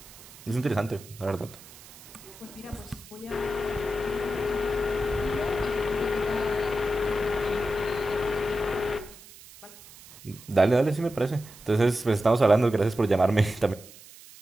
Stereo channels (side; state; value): right; noise; hiss, 20 dB below the sound